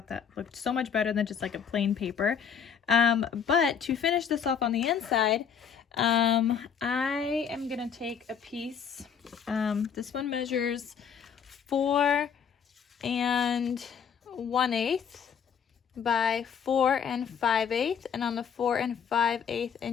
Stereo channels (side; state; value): right; quieter; 7.3 dB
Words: that looked so much better than just like a plain paper. But to finish this off on the inside, I am gonna take a piece. This one measures 4 1/8 by 4 5/8, and on the 4 5/8